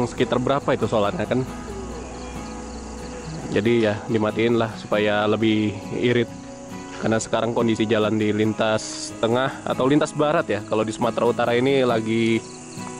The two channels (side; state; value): both; identical; correlation 1.00